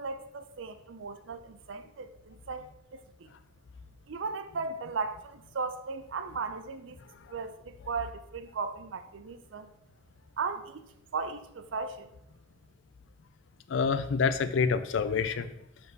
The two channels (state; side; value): normal; both; correlation -0.10